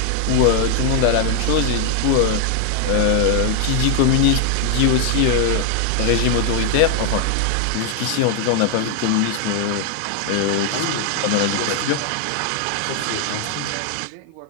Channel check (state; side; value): different; both; correlation 0.00